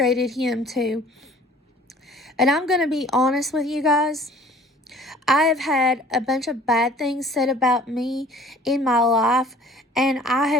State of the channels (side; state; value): both; normal; correlation 0.51